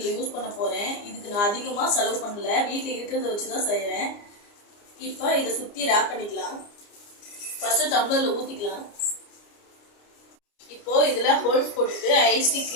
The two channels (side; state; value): right; late; 29 ms